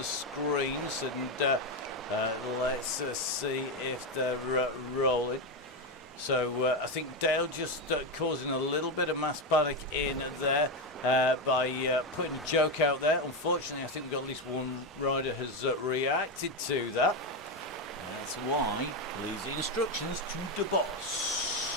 screens, and let's see if they're rolling. So I think Dale just causing a little bit of mass panic in there by putting a joke out there. Unfortunately, I think we've got at least one rider has reacted to that. That's why leaves the instructions to the boss.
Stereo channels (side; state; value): both; normal; correlation 0.10